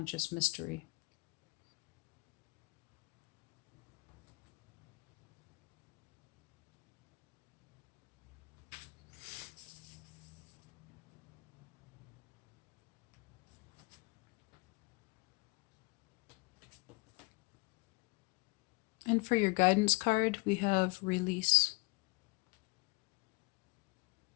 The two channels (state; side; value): quieter; right; 27.9 dB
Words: mystery. And for your guidance card, we have Release.